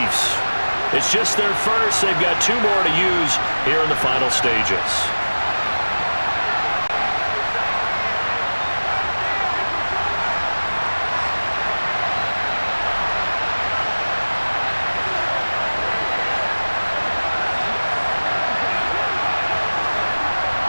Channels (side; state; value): both; inverted; correlation -1.00